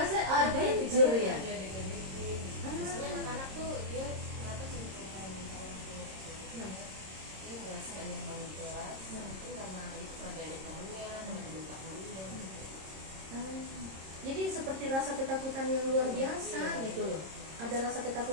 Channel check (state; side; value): late; left; 26 ms